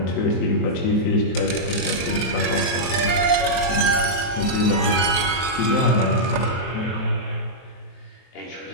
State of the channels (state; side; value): late; right; 23 ms